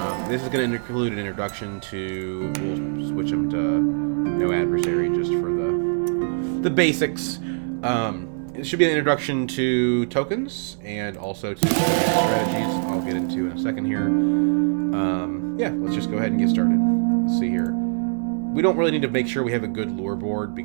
This is going to include an introduction to, we'll switch them to no adversary just for the basics. It should be an introduction to tokens and also to strategies I'll get into in a second here. Yeah, let's just go ahead and get started. Let's see here. We don't really need to make sure we have a good lure board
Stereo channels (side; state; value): left; silent; digital silence